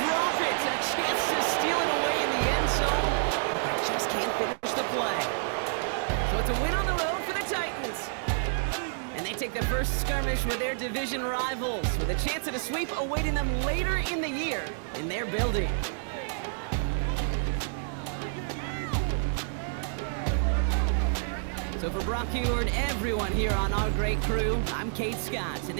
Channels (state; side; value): silent; left; digital silence